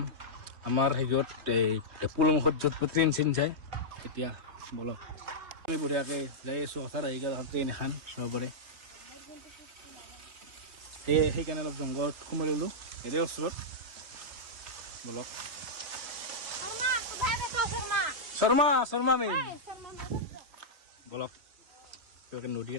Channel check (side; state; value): left; late; 3.1 ms